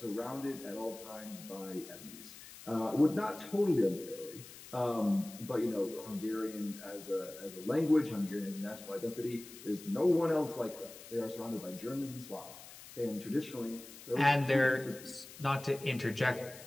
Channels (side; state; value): left; noise; hiss, 16 dB below the sound